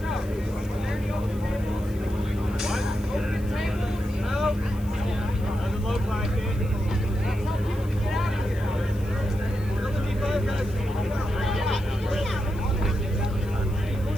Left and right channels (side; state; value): left; noise; hiss, 23 dB below the sound